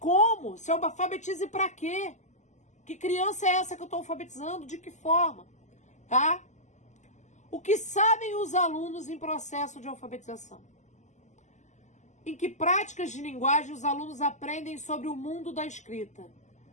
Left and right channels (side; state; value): right; late; 0.34 ms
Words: Se alfabetize para quê? Que criança é essa que eu estou alfabetizando? De que forma? Tá? O que sabem os alunos em processo de alfabetização? Em que práticas de linguagem os alunos aprendem sobre o mundo da escrita?